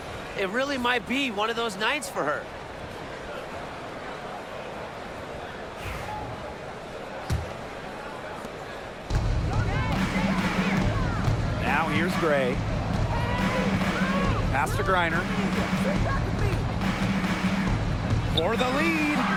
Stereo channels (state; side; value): identical; both; correlation 1.00